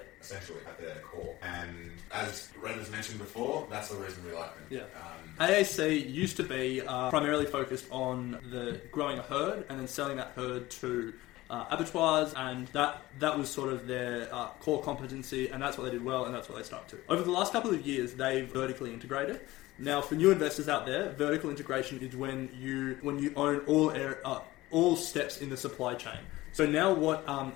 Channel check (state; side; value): quieter; right; 18.0 dB